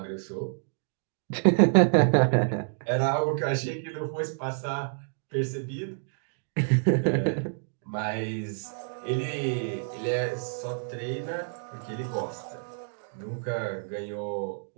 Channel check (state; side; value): silent; left; digital silence